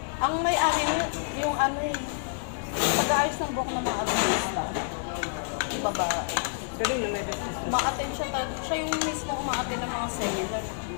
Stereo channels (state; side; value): silent; right; digital silence